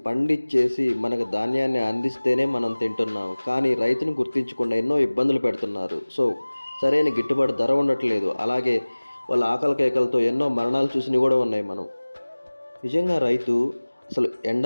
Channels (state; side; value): inverted; both; correlation -1.00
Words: పండించేసి మనకు ధాన్యాన్ని అందిస్తేనే మనం తింటున్నాం. కానీ రైతుని గుర్తించకుండా ఎన్నో ఇబ్బందులు పెడుతున్నారు. సో సరైన గిట్టుబాటు ధర ఉండట్లేదు. అలాగే వాళ్ళ ఆకలి కేకలతో ఎన్నో మరణాలు చూసినవి కూడా ఉన్నాయి. మనం నిజంగా రైతు అసలు